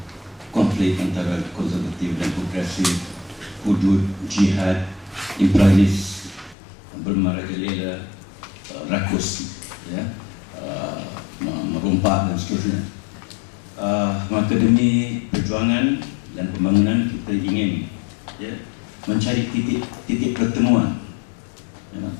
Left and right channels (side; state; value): right; drops out; at 6.6 s